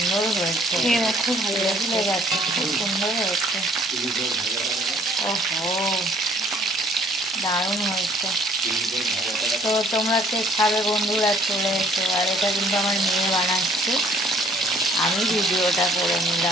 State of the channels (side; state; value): both; normal; correlation 0.58